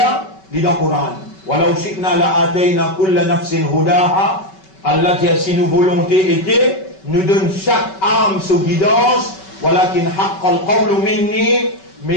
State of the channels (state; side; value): late; right; 5.3 ms